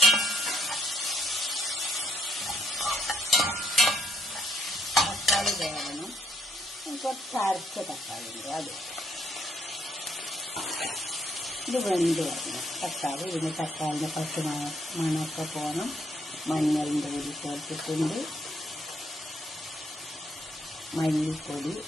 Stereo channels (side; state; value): both; normal; correlation 0.71